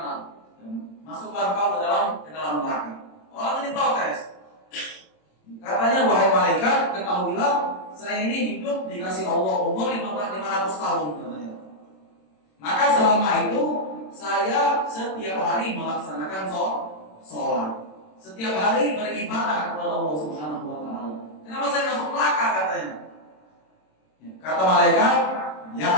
masuklah kau ke dalam neraka. Orang ini protes. Katanya wahai malaikat, ketahuilah saya ini hidup dikasih Allah umur 500 tahun katanya. Maka selama itu saya setiap hari melaksanakan sholat, setiap hari beribadah kepada Allah Subhanahu Wa Taala. Kenapa saya masuk neraka katanya? Kata malaikat, ya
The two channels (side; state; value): right; late; 27 ms